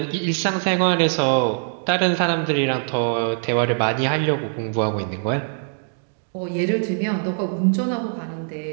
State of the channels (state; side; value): silent; left; digital silence